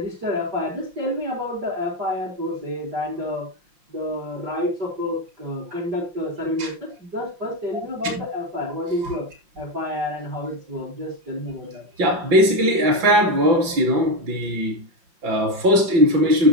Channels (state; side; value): late; left; 5.6 ms